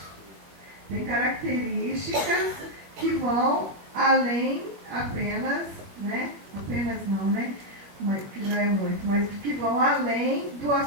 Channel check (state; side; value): late; left; 20 ms